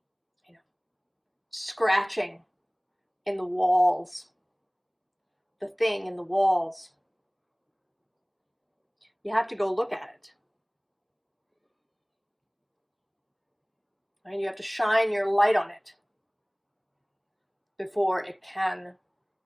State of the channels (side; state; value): both; identical; correlation 1.00